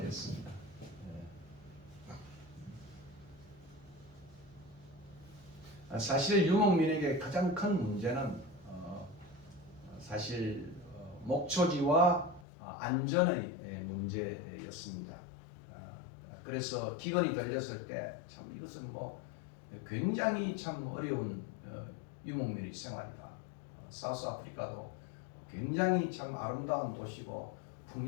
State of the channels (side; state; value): right; drops out; at 12.5 s